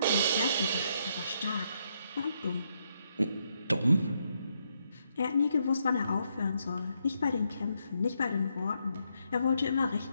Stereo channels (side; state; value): both; inverted; correlation -0.77